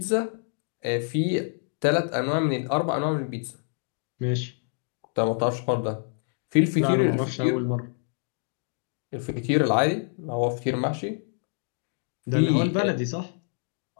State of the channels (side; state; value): right; silent; 60 dB below the other